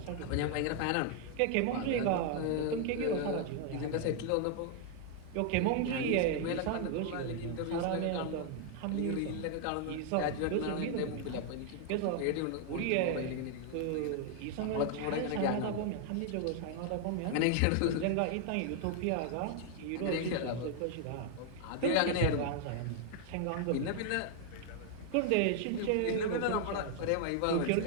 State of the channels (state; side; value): different; both; correlation 0.00